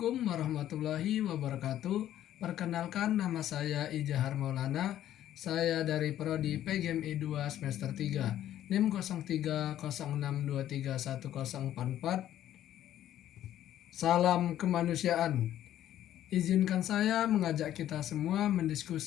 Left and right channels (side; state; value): right; quieter; 12.1 dB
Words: warahmatullahi wabarakatuh. Perkenalkan, nama saya Ijahar Maulana. Saya dari Prodi PGMI 2 semester 3, NIM 0306231044. Salam kemanusiaan. Izinkan saya mengajak kita semua